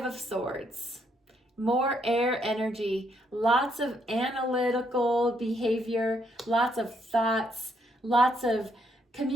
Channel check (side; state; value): both; normal; correlation 0.73